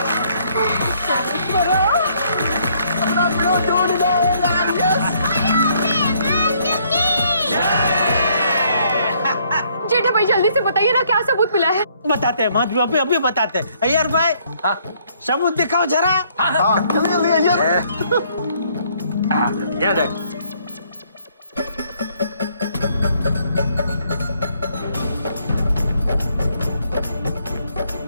जेठा भाई जल्दी से बताइए ना क्या सबूत मिला है। बताते हैं माधवी, अभी बताते हैं। अय्यर भाई सबूत दिखाओ जरा। ये देख।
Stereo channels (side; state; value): both; inverted; correlation -0.67